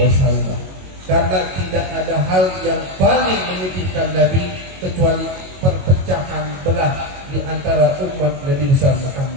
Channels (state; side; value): late; left; 22 ms